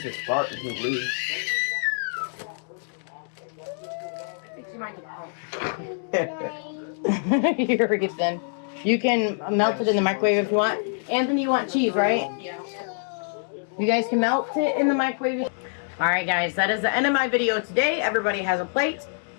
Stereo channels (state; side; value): silent; right; 61 dB below the other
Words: just fart and he'll leave. Here it then. You can melt it in the microwave if you want. Anthony, you want cheese, right? Yeah. You guys can melt it in the microwave. Alright guys, that is the end of my video today. Everybody has a plate.